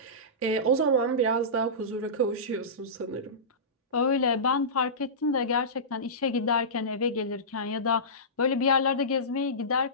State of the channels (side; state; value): both; normal; correlation -0.20